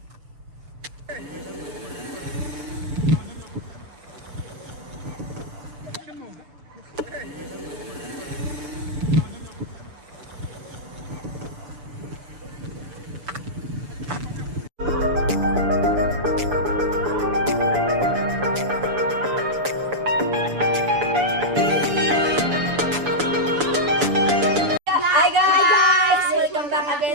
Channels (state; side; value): late; left; 6.9 ms